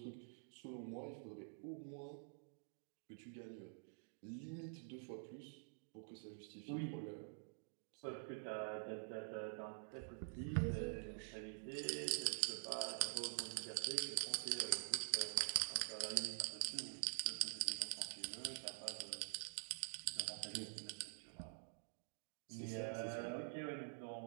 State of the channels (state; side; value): silent; left; digital silence